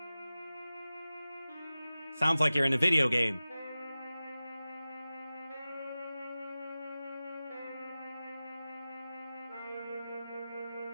Sounds like you're in a video game.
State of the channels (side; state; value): both; inverted; correlation -0.96